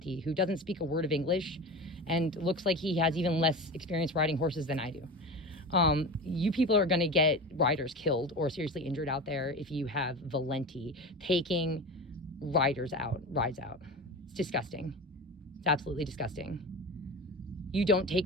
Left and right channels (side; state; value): both; normal; correlation 0.29